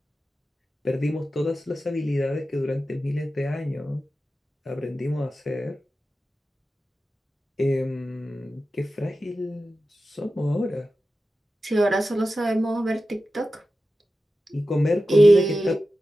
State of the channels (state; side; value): normal; both; correlation 0.93